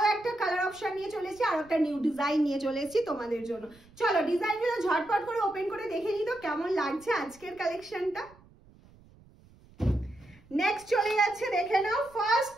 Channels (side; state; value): right; noise; rumble, 26 dB below the sound